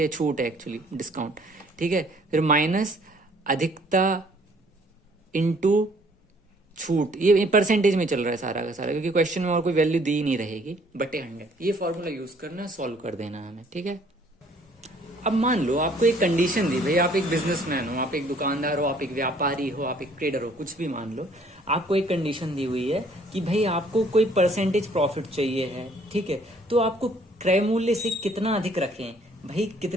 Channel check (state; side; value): normal; both; correlation 0.60